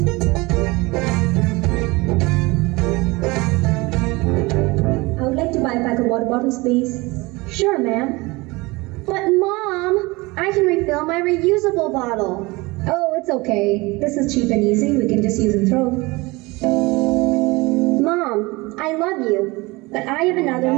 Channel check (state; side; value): quieter; left; 23.4 dB